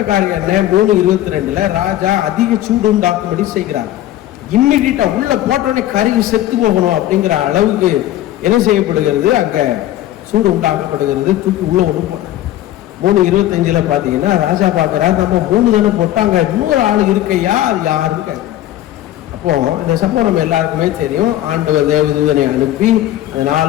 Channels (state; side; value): quieter; right; 13.6 dB